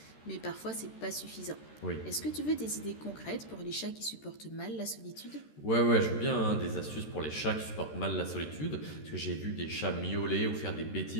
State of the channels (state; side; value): late; right; 13 ms